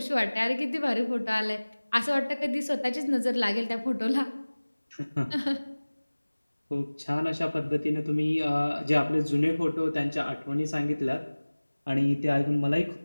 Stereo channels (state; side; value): inverted; both; correlation -1.00